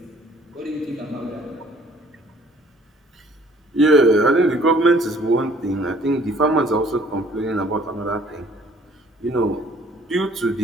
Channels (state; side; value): normal; both; correlation 0.57